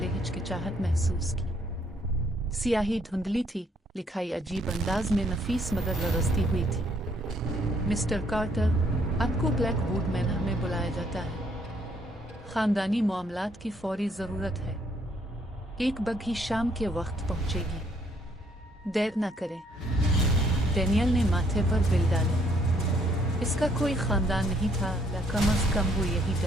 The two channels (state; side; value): normal; both; correlation 0.68